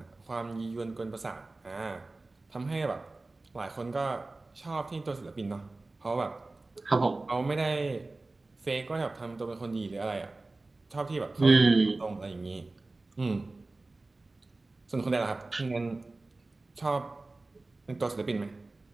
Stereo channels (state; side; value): quieter; left; 3.2 dB